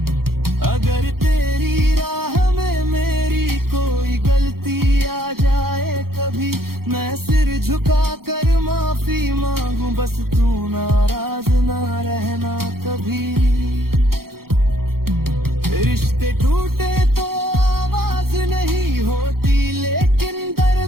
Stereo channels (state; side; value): late; left; 0.94 ms